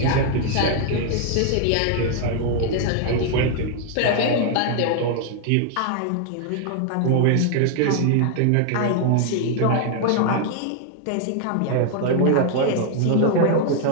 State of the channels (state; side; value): different; both; correlation 0.00